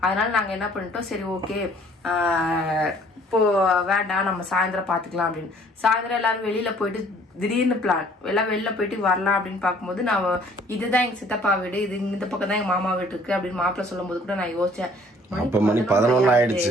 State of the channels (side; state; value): both; normal; correlation 0.57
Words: அதனால நாங்க என்ன பண்ணிட்டோம், சரி ஓகே இப்போ வேண்டாம் நம்ம சாயந்தரம் பாத்துக்கலாம் அப்படின்னு. சாயந்தரம் எல்லாரும் வெளியில போயிட்டு திடீர்னு பிளான் எல்லாம் வெளில போயிட்டு வரலாம் அப்படின்னு பார்க்கும்போது நான் இதுதான் எங்க சித்தப்பா வீடு, இது இந்த பக்கம் தான் எங்க மாமா வீடு இருக்கு அப்படின்னு மாப்பிள்ள சொல்லும் போது கூட நான் யோசிச்சேன், மணி 11